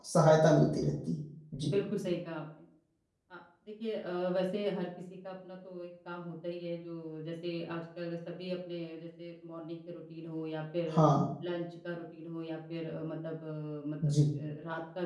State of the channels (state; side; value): identical; both; correlation 1.00